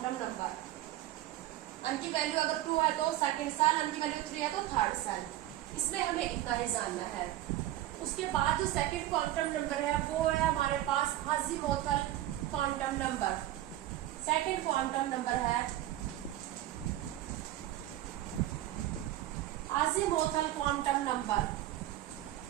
नंबर। अन की वैल्यू अगर 2 है तो सेकंड सेल, अन की वैल्यू 3 है तो थर्ड सेल। इसमें हमें इतना ही जानना है। उसके बाद जो सेकंड क्वांटम नंबर है वो है हमारे पास azimuthal quantum number. Second quantum number है अज़ीमुथल क्वांटम नंबर।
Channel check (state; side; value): quieter; left; 14.4 dB